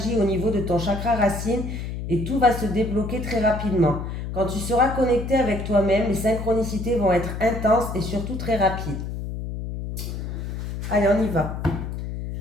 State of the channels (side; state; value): left; noise; hum, 6 dB below the sound